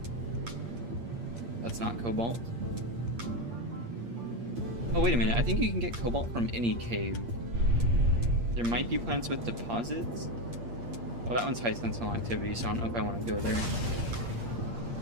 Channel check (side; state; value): left; late; 8.6 ms